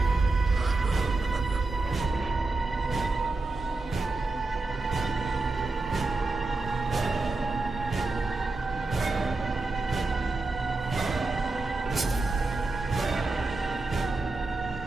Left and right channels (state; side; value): quieter; left; 3.3 dB